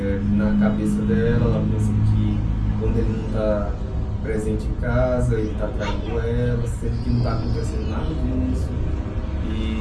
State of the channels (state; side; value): identical; both; correlation 1.00